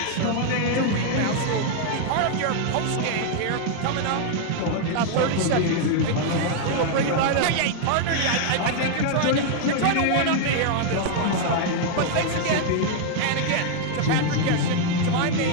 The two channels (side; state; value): both; different; correlation 0.00